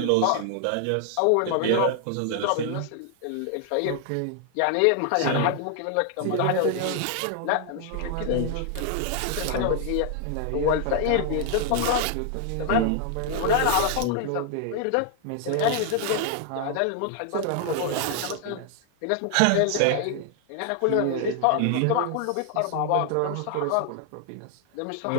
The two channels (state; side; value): different; both; correlation 0.00